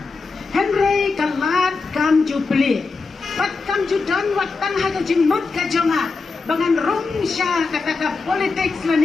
Henry kalat kam jupli. But kam ju don wat tan ha kajing mut kajonga. Bangan rong sya kata ka politics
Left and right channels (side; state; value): right; quieter; 4.2 dB